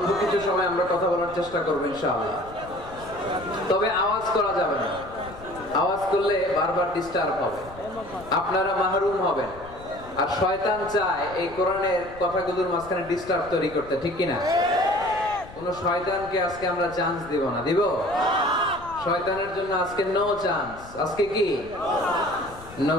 কিছু সময় আমরা কথা বলার চেষ্টা করবো ইনশাআল্লাহ। তবে আওয়াজ করা যাবে না। আওয়াজ করলে বারবার ডিস্টার্ব হবে, আপনারা মাহরুম হবেন। আর শয়তান চায় এই কোরআনের কথাগুলোর মাঝখানে ডিস্টার্ব তৈরি করতে, ঠিক কিনা? কোন শয়তানকে আজকে আমরা চান্স দিব না। দিব? শয়তানের জন্য আজকে নো চান্স। আজকে কি? No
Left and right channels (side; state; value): left; noise; rumble, 18 dB below the sound